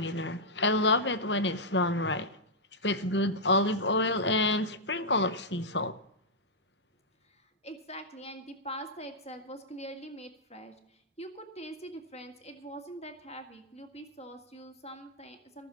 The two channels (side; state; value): both; normal; correlation -0.09